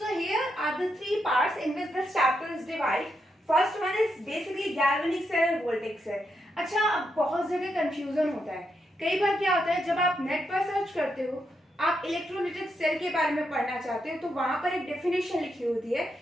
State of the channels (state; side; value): normal; both; correlation 0.82